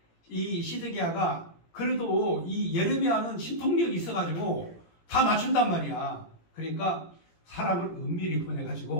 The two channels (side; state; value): right; late; 17 ms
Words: 이 시드기야가 그래도 이 예레미야는 신통력이 있어가지고 다 맞춘단 말이야. 그러니까 사람을 은밀히